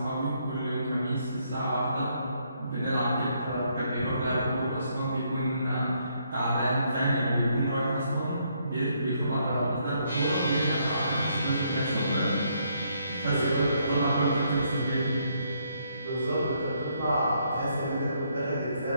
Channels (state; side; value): inverted; both; correlation -0.72